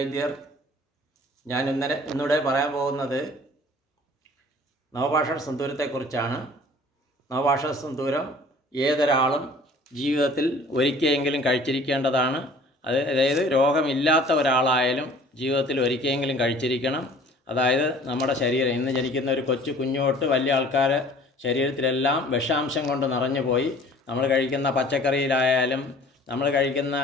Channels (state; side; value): normal; both; correlation 0.50